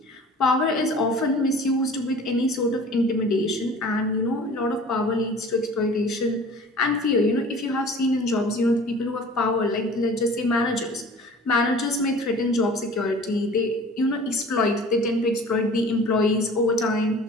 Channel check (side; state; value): both; normal; correlation 0.44